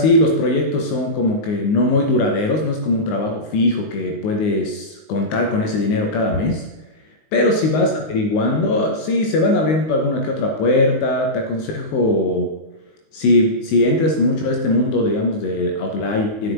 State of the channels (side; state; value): right; late; 19 ms